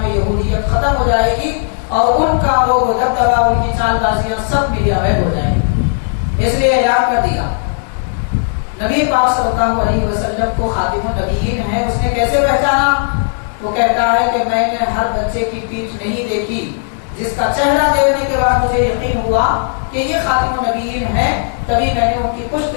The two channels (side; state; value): right; silent; digital silence